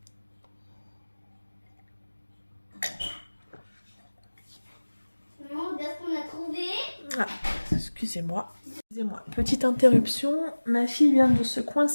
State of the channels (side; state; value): both; inverted; correlation -1.00